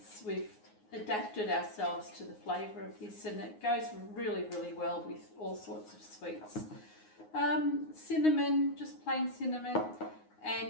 We've adapted ourselves to the flavour of this, and it goes really, really well with all sorts of sweets. Cinnamon, just plain cinnamon,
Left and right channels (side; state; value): right; late; 9.6 ms